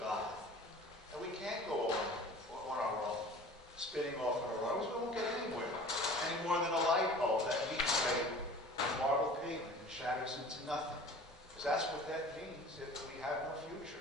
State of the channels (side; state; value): both; normal; correlation 0.43